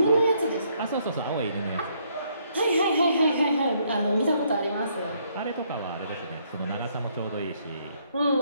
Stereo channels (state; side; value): inverted; both; correlation -0.70